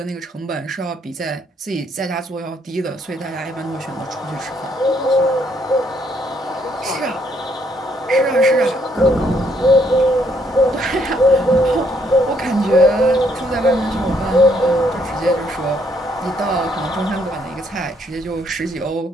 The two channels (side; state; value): both; normal; correlation 0.70